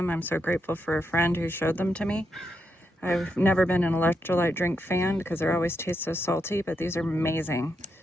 I'm so grateful for a friend who showed them to me. I've never been an electrolyte drink fan because they always taste so salty, but these are amazing.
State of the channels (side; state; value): both; normal; correlation 0.83